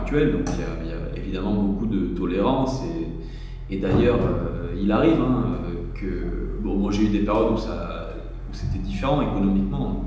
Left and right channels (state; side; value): identical; both; correlation 1.00